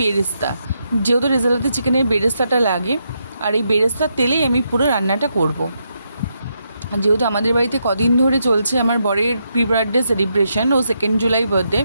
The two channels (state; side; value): inverted; both; correlation -0.81